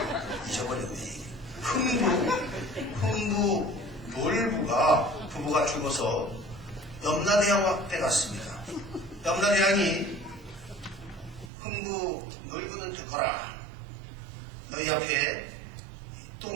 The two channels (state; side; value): drops out; left; at 11.5 s